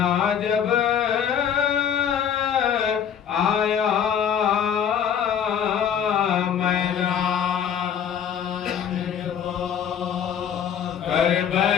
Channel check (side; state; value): right; quieter; 8.5 dB